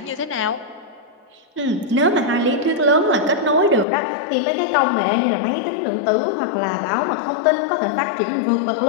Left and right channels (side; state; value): right; drops out; at 3.9 s